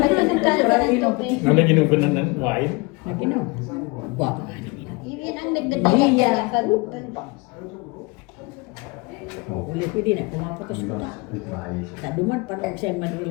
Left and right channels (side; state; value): right; quieter; 26.6 dB